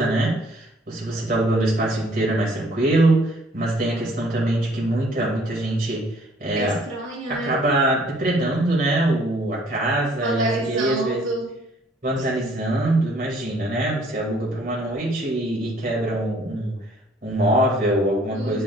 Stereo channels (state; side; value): normal; both; correlation 0.59